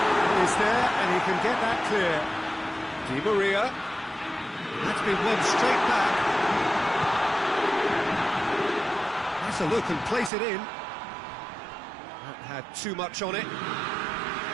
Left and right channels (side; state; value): left; drops out; at 10.3 s